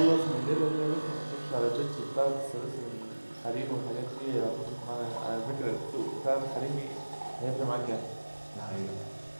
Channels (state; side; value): inverted; both; correlation -1.00